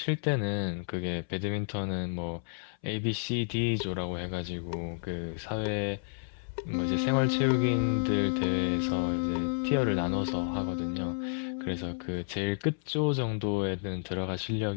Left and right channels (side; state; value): right; silent; 57 dB below the other